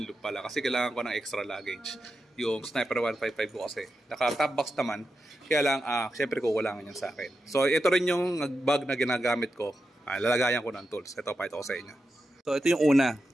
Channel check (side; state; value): both; normal; correlation 0.89